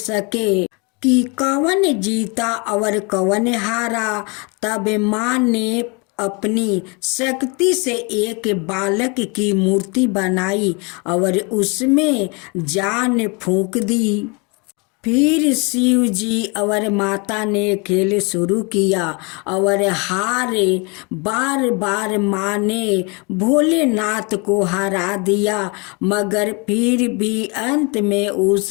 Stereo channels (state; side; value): quieter; right; 30.9 dB